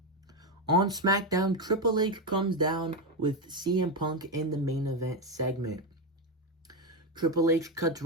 On SmackDown, Triple H comes down with CM Punk in the main event segment. Triple H cuts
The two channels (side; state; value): both; normal; correlation 0.10